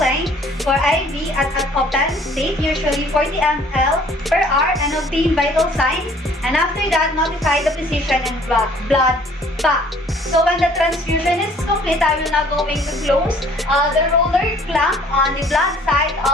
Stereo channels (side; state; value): both; normal; correlation 0.56